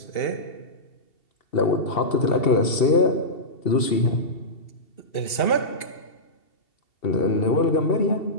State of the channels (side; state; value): right; late; 2.7 ms